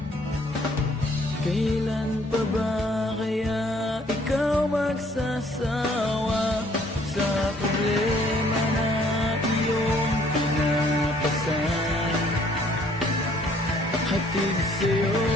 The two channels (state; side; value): normal; both; correlation 0.62